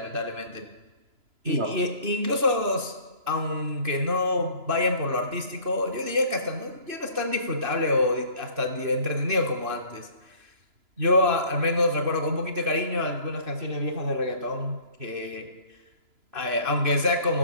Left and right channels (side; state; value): left; late; 3.0 ms